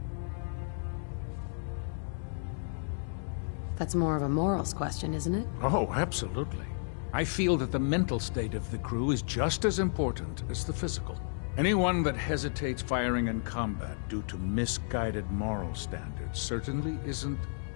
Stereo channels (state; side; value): silent; right; digital silence